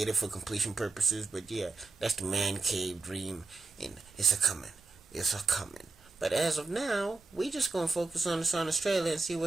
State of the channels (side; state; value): left; quieter; 3.7 dB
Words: it for completion purposes, but yeah, that's the man cave dream, and it's a coming. But as of now, we just gonna focus on this on Australia and see